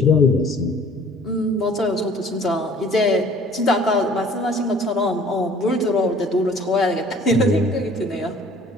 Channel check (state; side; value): normal; both; correlation 0.52